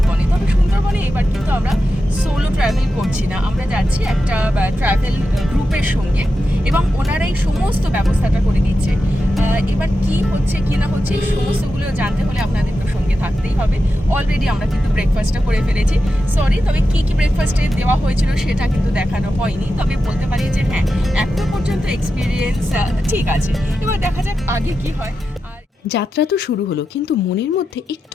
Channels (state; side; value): normal; both; correlation 0.90